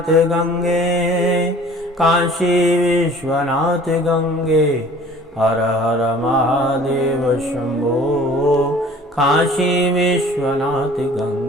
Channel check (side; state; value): both; normal; correlation 0.48